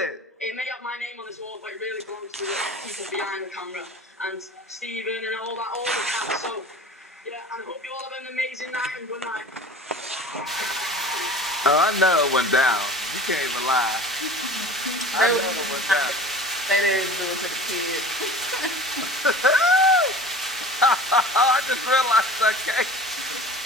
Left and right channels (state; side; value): normal; both; correlation 0.40